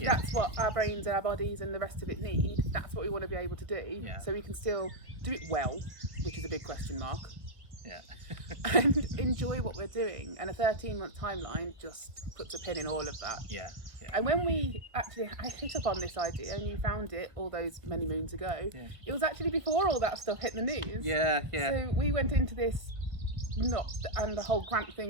that's what our brains and our bodies and the rest of it need, that's what we want to be able to do. Yeah. So we can still do it well, which is a big question mark. Yeah. And enjoy what we're doing. And a 13-month timeline just puts a pin in all of that. Yeah. Yeah. And when I hit up on this idea and you found it all those many moons ago, it was actually before all that stuff hit the news. Yeah, yeah. So we went into this and the whole grant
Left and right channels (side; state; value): left; late; 1.4 ms